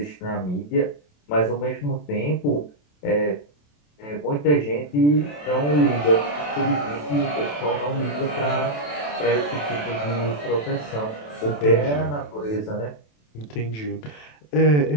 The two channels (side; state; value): right; late; 27 ms